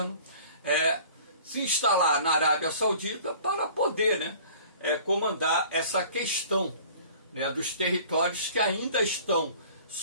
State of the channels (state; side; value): inverted; both; correlation -0.48